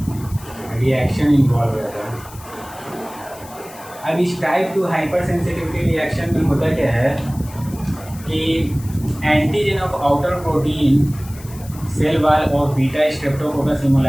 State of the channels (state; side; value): noise; left; hiss, 19 dB below the sound